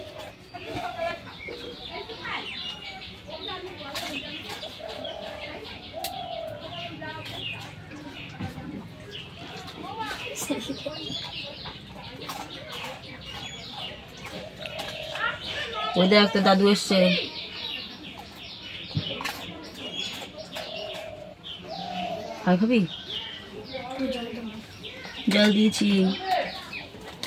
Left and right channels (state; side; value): identical; both; correlation 1.00